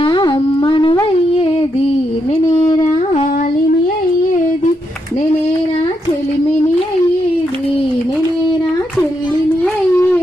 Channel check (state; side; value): normal; both; correlation 0.81